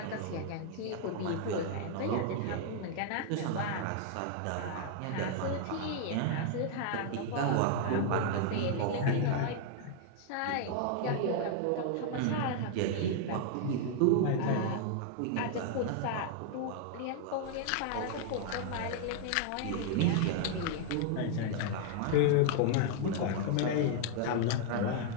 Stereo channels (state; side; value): different; both; correlation 0.00